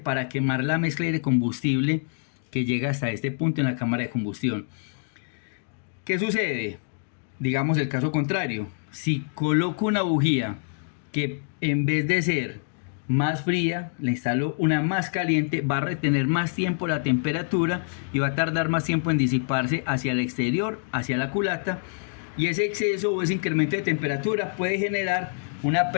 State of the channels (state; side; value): silent; right; digital silence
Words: quemar la mezcla de combustible que llega hasta este punto en la cámara de combustión. ¿Qué sucede? Digamos el caso contrario. Si coloco una bujía que en vez de ser más fría, le instalo una más caliente, va a retener más tiempo la temperatura y va a tardar más tiempo en disiparse hacia el exterior, hacia la culata, y ese exceso o ese incremento de temperatura puede generar una